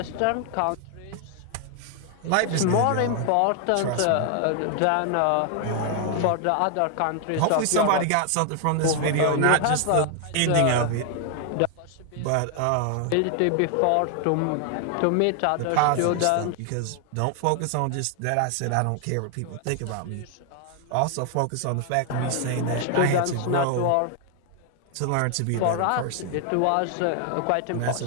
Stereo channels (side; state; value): both; different; correlation 0.00